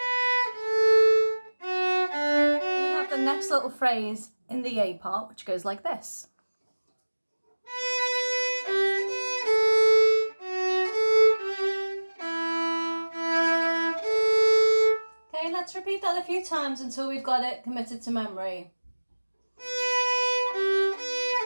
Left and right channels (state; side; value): inverted; both; correlation -1.00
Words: Next little phrase in the A part, which goes like this. Okay, let's repeat that a few times until we've got it committed to memory.